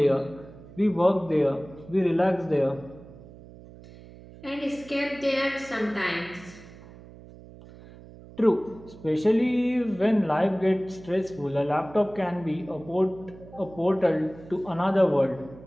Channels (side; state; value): right; noise; hum, 19 dB below the sound